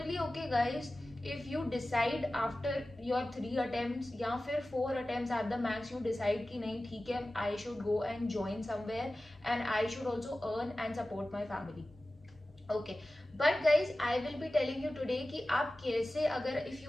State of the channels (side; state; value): both; normal; correlation 0.96